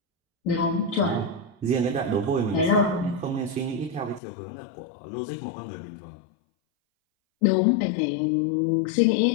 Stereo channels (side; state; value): right; drops out; at 4.2 s